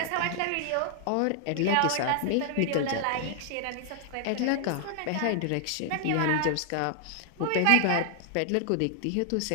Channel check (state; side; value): different; both; correlation 0.00